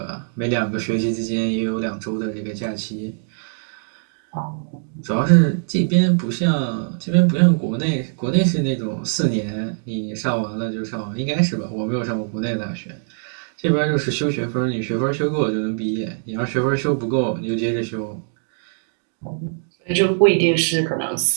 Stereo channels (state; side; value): silent; left; digital silence